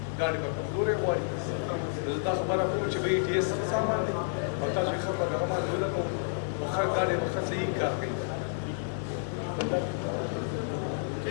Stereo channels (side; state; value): right; silent; digital silence